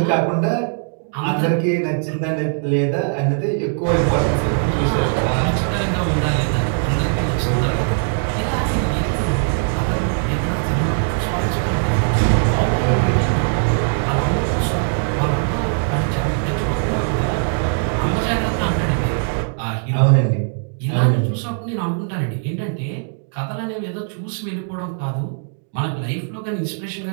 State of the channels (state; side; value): silent; left; digital silence